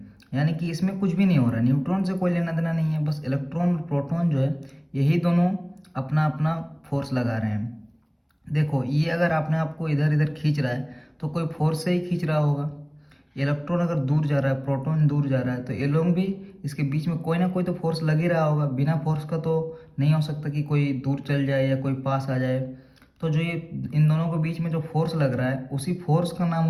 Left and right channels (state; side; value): identical; both; correlation 1.00